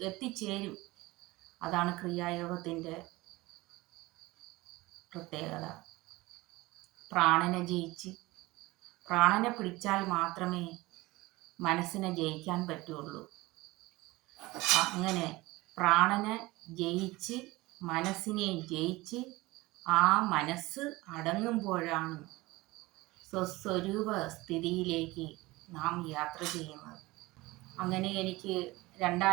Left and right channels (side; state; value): left; quieter; 20.7 dB